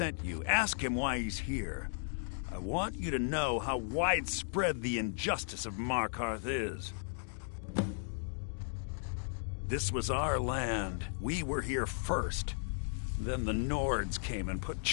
you. Ask him why he's here. I want you to know how widespread the injustice of Markarth is. This was our land. We were here first. Then the Nords came and put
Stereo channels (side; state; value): right; silent; digital silence